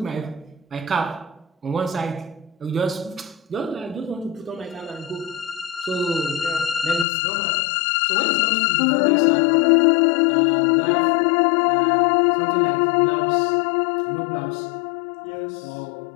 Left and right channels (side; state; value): right; drops out; at 7.1 s